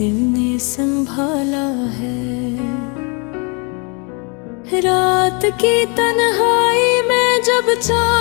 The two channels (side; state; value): right; quieter; 33.5 dB